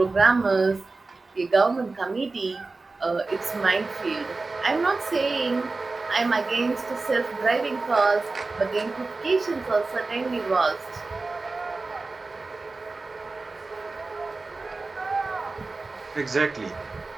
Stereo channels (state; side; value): quieter; left; 3.6 dB